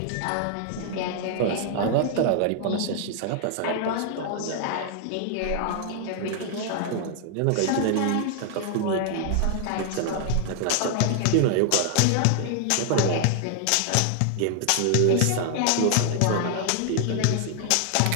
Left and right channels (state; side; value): different; both; correlation 0.00